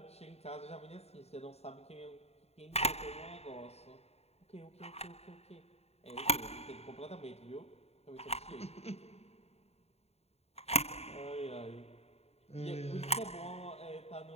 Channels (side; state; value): right; late; 0.30 ms